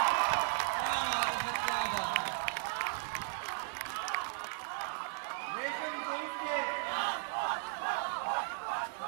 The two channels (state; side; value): silent; left; digital silence